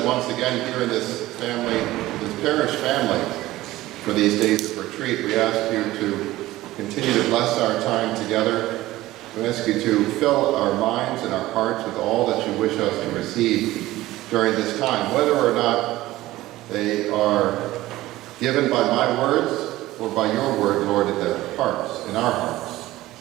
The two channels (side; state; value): left; quieter; 16.8 dB